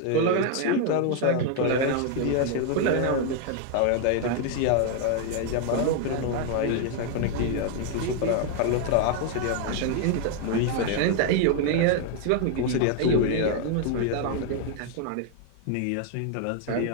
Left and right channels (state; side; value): different; both; correlation 0.00